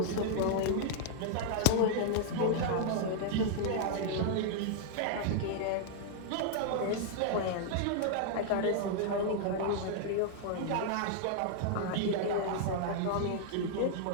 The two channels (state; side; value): different; both; correlation -0.01